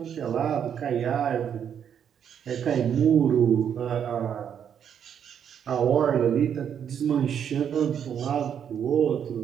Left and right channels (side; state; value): left; quieter; 8.5 dB